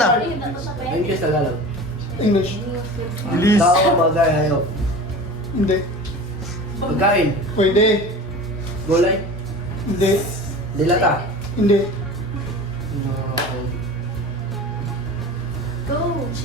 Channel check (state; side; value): normal; both; correlation 0.36